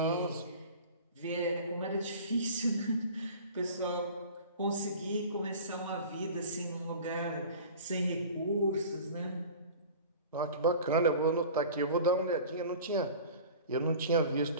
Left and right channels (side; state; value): both; inverted; correlation -0.40